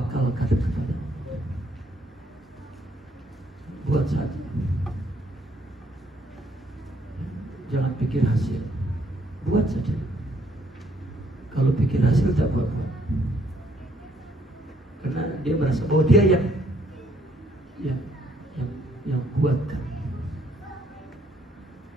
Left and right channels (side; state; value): both; normal; correlation 0.68